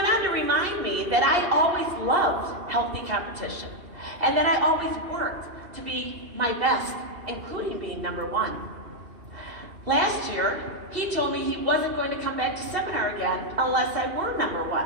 on to remind me that I always loved healthy competition and that I always worked to be my best, including being #1. Last year, he told me he wasn't going to come back to seminar again unless I were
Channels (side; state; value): left; late; 2.7 ms